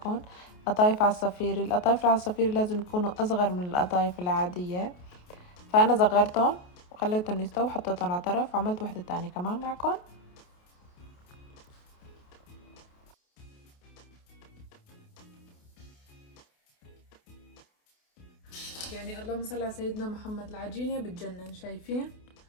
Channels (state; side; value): late; right; 28 ms